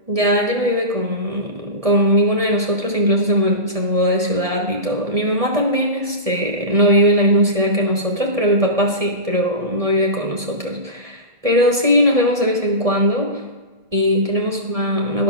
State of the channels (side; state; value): left; late; 1.7 ms